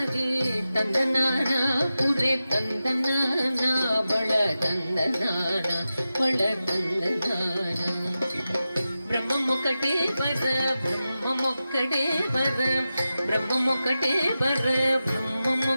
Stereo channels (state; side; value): inverted; both; correlation -0.93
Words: తందనానా పురే తందనానా బళ తందనానా బళ తందనానా. బ్రహ్మమొక్కటే పర బ్రహ్మమొక్కటే పర బ్రహ్మమొక్కటే పర